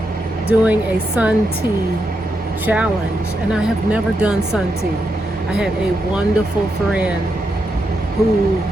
doing a sun tea challenge, and I have never done sun tea. I had a wonderful friend who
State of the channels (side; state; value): both; normal; correlation 0.83